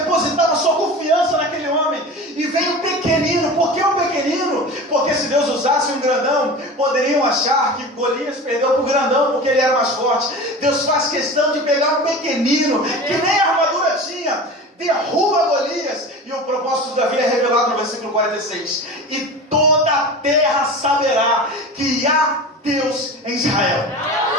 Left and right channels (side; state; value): both; normal; correlation 0.33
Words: sua confiança naquele homem. E vem o pequenino. Por que o pequenino? Porque se Deus usasse um grandão, poderiam achar que Golias perdeu para o grandão porque ele era mais forte. Deus faz questão de pegar um pequenino que nem armadura tinha, derruba Golias, e o propósito de Davi é revelado no versículo 46. E toda a terra saberá que há Deus em Israel.